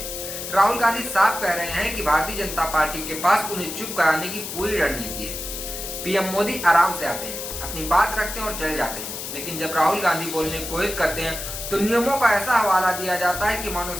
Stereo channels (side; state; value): left; noise; hiss, 7 dB below the sound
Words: राहुल गांधी साफ कह रहे हैं कि भारतीय जनता पार्टी के पास उन्हें चुप कराने की पूरी रणनीति है। पीएम मोदी आराम से आते हैं, अपनी बात रखते हैं और चले जाते हैं, लेकिन जब राहुल गांधी बोलने की कोशिश करते हैं तो नियमों का ऐसा हवाला दिया जाता है कि मानो